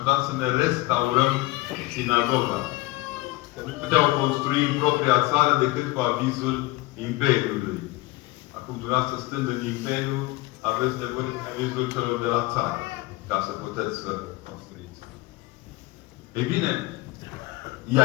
să ne restaurăm sinagoga. Că nu puteau construi în propria țară decât cu avizul Imperiului. Acum, dumneavoastră, stând în Imperiu, aveți nevoie de avizul celor de la țară, ca să puteți să construiți. Ei bine,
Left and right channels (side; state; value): right; quieter; 20.0 dB